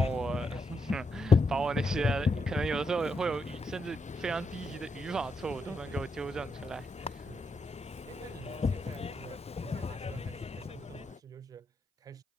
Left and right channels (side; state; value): both; normal; correlation 0.82